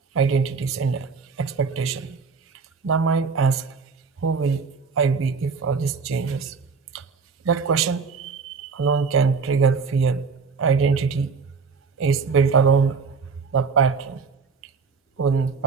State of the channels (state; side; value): quieter; left; 5.1 dB